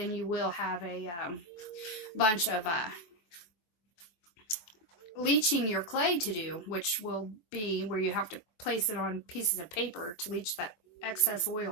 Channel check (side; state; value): right; late; 23 ms